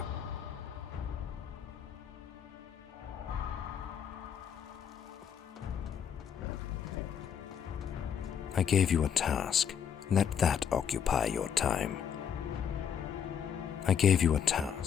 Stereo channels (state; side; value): quieter; right; 8.2 dB